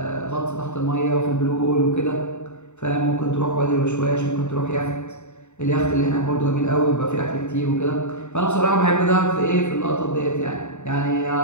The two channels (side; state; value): right; late; 0.83 ms